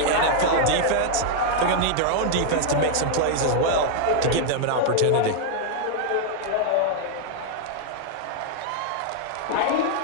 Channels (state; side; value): different; both; correlation 0.00